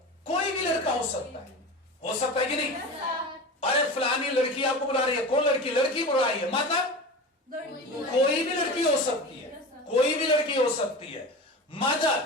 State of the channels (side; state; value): both; normal; correlation 0.30